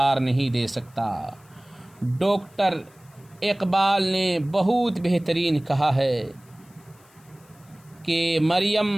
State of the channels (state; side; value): noise; left; hiss, 30 dB below the sound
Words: نہیں دے سکتا۔ ڈاکٹر اقبال نے بہت بہترین کہا ہے کہ